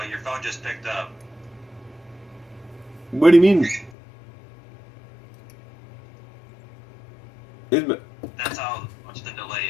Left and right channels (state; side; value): drops out; right; at 3.9 s